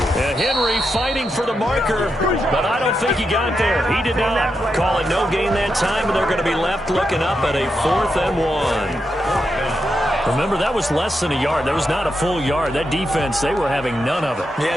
Henry fighting for the marker, but I don't think he got there. He did not. Call it no gain that time, and they're going to be left looking up at a 4th and 1. Remember, that was less than a yard. That was not a full yard. That defense, they were having none of it. Yeah,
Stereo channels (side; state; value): both; normal; correlation 0.85